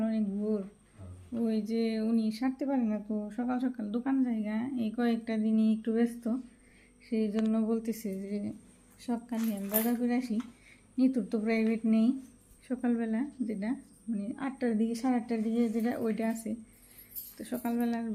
অনেক ভোর। ওই যে উনি সারতে পারে না, তো সকাল সকাল দোকান জায়গা এই কয়েকটা দিনই একটু ব্যস্ত, সেই জন্য বলতেছে যে সকালে আমি বাজার করে আসি। নিতুর তো প্রাইভেট নেই সকালবেলা, যেটা মানে 8টার দিকে 8:30টার দিকে যেটা ওইটা আছে। তো সকালবেলা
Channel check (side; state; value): both; identical; correlation 1.00